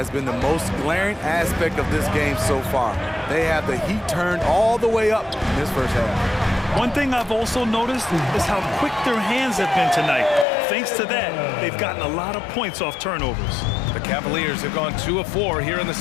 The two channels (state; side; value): drops out; right; at 10.5 s